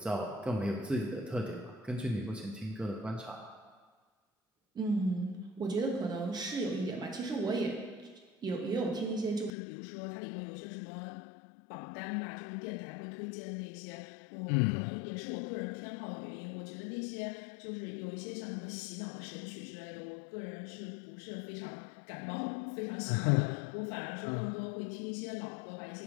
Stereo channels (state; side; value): drops out; right; at 9.5 s